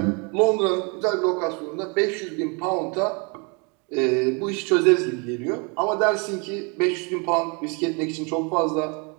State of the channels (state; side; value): quieter; left; 32.6 dB